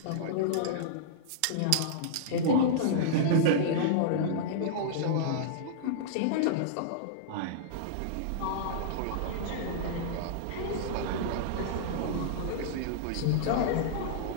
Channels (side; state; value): both; different; correlation -0.02